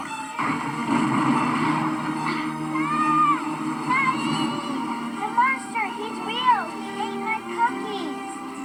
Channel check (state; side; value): identical; both; correlation 1.00